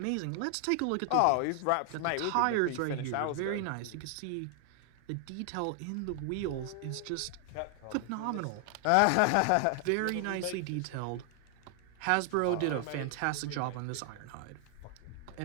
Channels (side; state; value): both; different; correlation 0.00